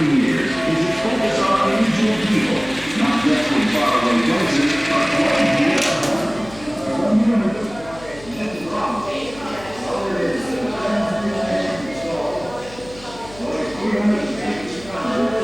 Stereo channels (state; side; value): noise; left; hum, 19 dB below the sound